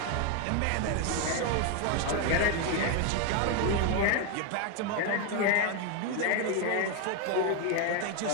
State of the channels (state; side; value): different; both; correlation 0.01